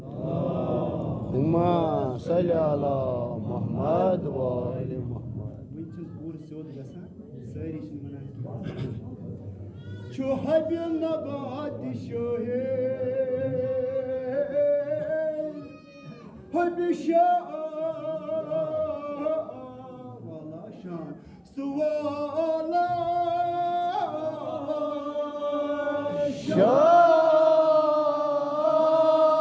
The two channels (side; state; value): both; identical; correlation 1.00